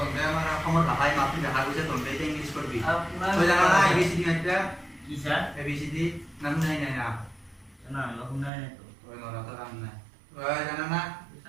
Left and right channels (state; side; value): drops out; left; at 8.5 s